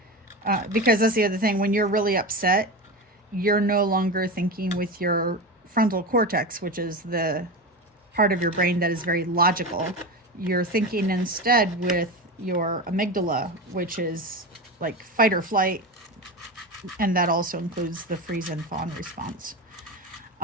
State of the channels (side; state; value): both; normal; correlation 0.22